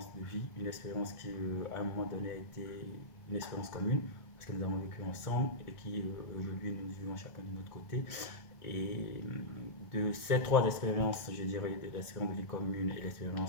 de vie, une expérience qui à un moment donné a été une expérience commune parce que nous avons vécu ensemble et qui aujourd'hui nous vivons chacun de notre côté. Et de ces trois expériences, je dirais, de l'expérience de vie commune et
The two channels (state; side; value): late; right; 1.4 ms